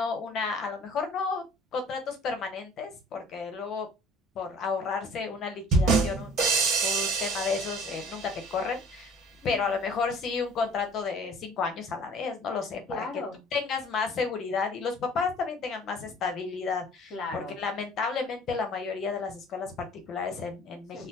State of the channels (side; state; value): both; normal; correlation 0.49